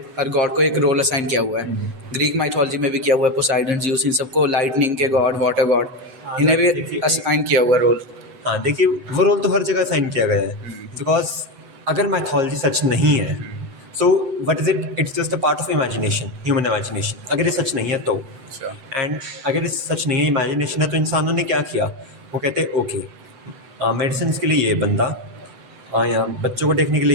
हर गॉड को एक रोल असाइन किया हुआ है, ग्रीक माइथोलॉजी में भी किया हुआ है। पोसाइडन, ज्यूस, इन सबको लाइटनिंग के गॉड, वाटर गॉड, इन्हें भी देखिए- असाइन किया हुआ रोल। हाँ देखिए, वो रोल तो हर जगह साइन किया गया है। बिकॉज अगर मैथोलॉजी सच नहीं है, so what is it? It's just a part of imagination, human imagination. अगर ये सच नहीं है तो, एंड अगर ये सच नहीं है, इमेजिनेशन है, तो इंसानों ने क्या किया? वो कहते हैं ओके, मेडिसिन के लिए ये बंदा, यहाँ बच्चों को देखने के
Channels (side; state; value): left; late; 7.9 ms